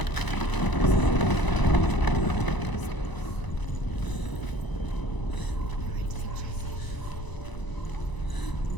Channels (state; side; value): late; right; 1.0 ms